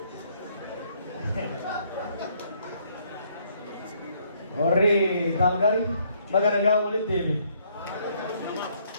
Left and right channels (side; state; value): both; inverted; correlation -0.68